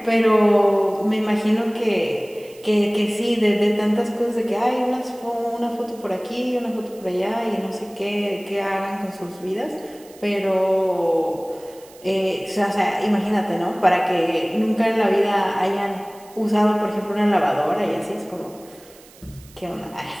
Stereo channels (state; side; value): noise; right; hiss, 24 dB below the sound